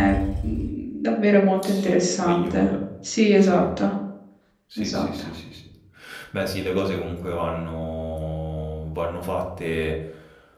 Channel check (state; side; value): identical; both; correlation 1.00